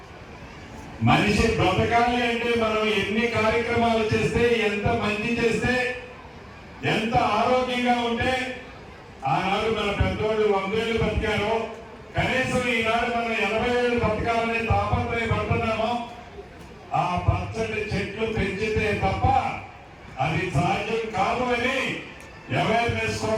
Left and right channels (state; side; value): identical; both; correlation 1.00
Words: మనిషి బ్రతకాలి అంటే మనం ఎన్ని కార్యక్రమాలు చేస్తే, ఎంత మంచి చేస్తే, ఎంత ఆరోగ్యంగా ఉంటే, ఆనాడు మన పెద్దోళ్ళు 100 ఏళ్ళు బతికారో, కనీసం ఈనాడు మనం 80 ఏళ్ళు బతకాలని తాపత్రయపడుతున్నామో, ఆ పచ్చటి చెట్లు పెంచితే తప్ప అది సాధ్యం కాదు అని అవేర్నెస్